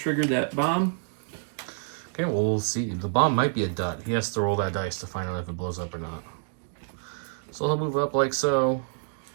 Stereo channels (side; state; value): left; silent; digital silence